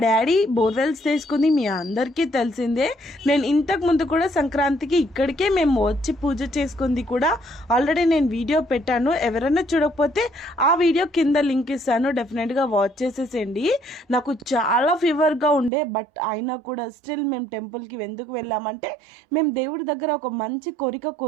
daddy borewells తీసుకుంది మీ అందరికీ తెలిసిందే. నేను ఇంతకు ముందు కూడా సంక్రాంతికి ఇక్కడికే మేము వచ్చి పూజ చేసుకుంది కూడా ఆల్రెడీ నేను వీడియో పెట్టాను. ఎవరైనా చూడకపోతే ఆ వీడియో కింద లింక్ ఇస్తాను, డెఫినెట్గా వాచ్ చేసేసేయండి. నాకు చాలా ఫీవర్గా ఉండే, బట్ అయినా కూడా స్టిల్ మేము టెంపుల్కి ఎందుకు వెళ్ళామంటే మేము దేవుడి దగ్గర ఒక మంచి కోరిక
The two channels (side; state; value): left; drops out; at 15.7 s